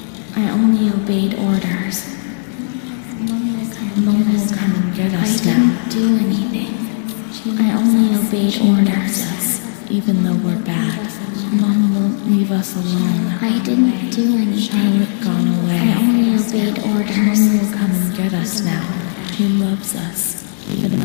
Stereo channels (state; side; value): silent; right; digital silence